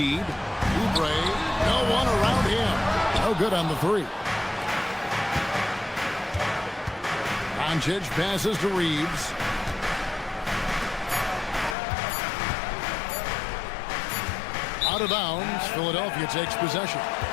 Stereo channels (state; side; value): drops out; right; at 11.8 s